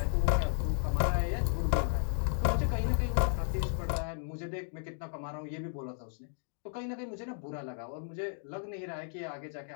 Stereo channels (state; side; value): silent; right; digital silence